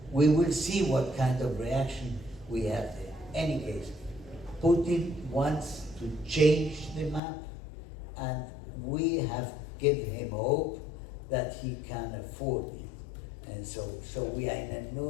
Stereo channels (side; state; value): right; drops out; at 7.2 s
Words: We will see what kind of reaction we have there. Any case, Putin wants to change the map, and we have given him hope that he can afford it. And so we are in an